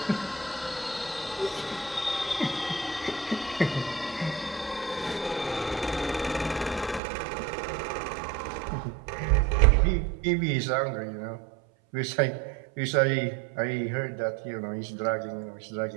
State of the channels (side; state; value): left; drops out; at 7.0 s